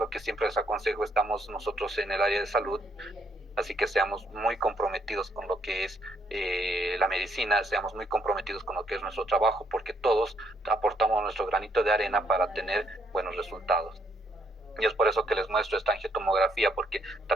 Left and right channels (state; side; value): normal; both; correlation 0.72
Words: que siempre les aconsejo. Estamos nosotros en el área de salud, así que seamos muy comprometidos con lo que es la medicina, seamos muy comprometidos con lo que es nuestro trabajo, porque todos aportamos nuestro granito de arena para tener buenos resultados. Y es por eso que les muestro esta angiotomografía, porque